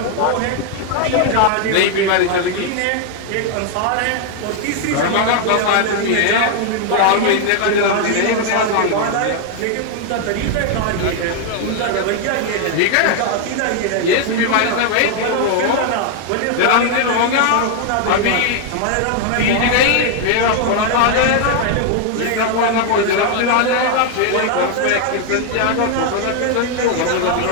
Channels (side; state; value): both; different; correlation 0.00